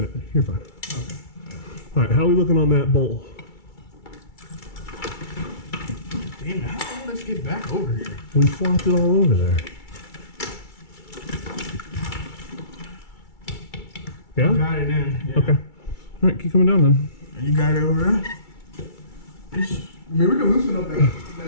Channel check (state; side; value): late; right; 2.3 ms